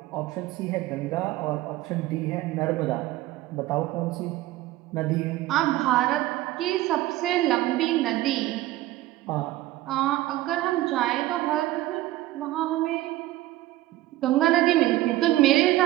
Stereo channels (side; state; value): left; quieter; 16.2 dB